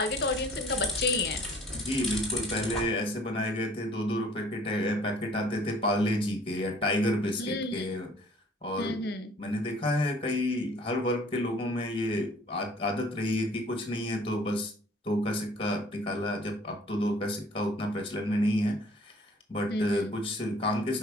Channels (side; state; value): both; normal; correlation 0.54